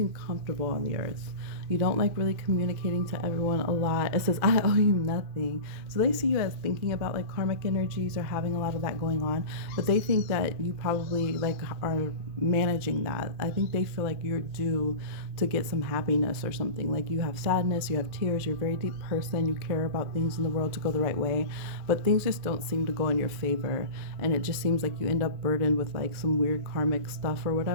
comfortable on the Earth. You don't like really communicating to everyone a lot. It says, I owe you nothing. So they see you as thinking about like karmic energies or having a lot of that going on. But they think that you probably like are managing that. I think they feel like you're due to get some happiness or something. Like you have sadness, you have tears, you're a very deep person, you care about things in the world to go the right way. But things just don't seem to go in your favor. And it just seems like you end up burdened with like some weird karmic stuff or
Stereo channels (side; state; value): left; late; 2.4 ms